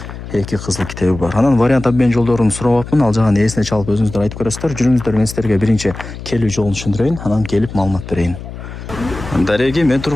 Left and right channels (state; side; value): noise; left; hum, 11 dB below the sound